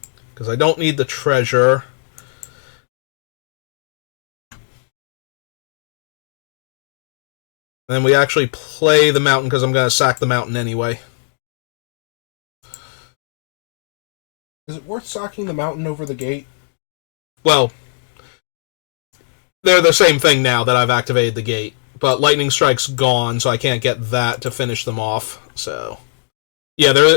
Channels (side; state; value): right; silent; digital silence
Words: Because I don't need the treasure. And then we actually play the mountain because I'm going to sack the mountain anyway. Is it worth sacking the mountain over the gate? Well, they're the same thing now that I've activated the gate. But Lightning Strike's gone, so I can't get that to finish them off. So, yeah,